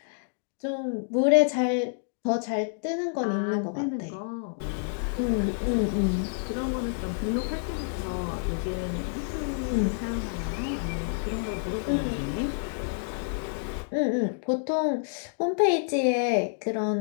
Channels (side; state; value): right; silent; digital silence